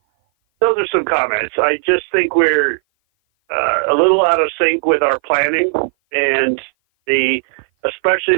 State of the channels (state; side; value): silent; left; 56 dB below the other